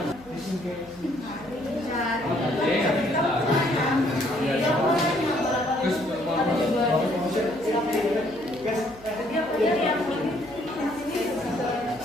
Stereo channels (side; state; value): right; noise; hum, 22 dB below the sound